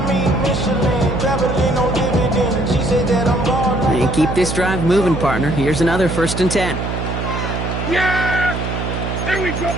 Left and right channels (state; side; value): noise; right; hum, 4 dB below the sound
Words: And keep this drive moving, partner. Here's another 1st and 10. Yeah! Here we go,